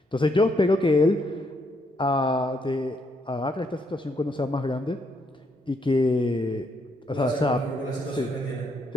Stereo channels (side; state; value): both; normal; correlation 0.74